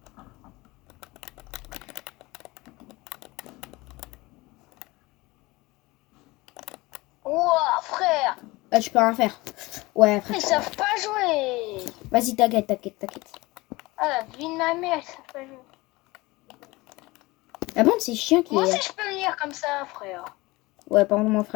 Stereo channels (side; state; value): right; quieter; 21.8 dB